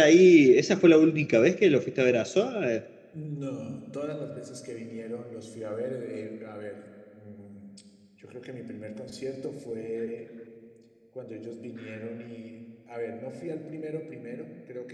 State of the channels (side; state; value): both; identical; correlation 1.00